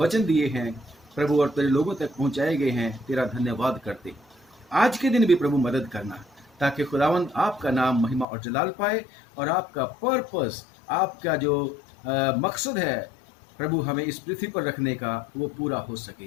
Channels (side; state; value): right; drops out; at 8.2 s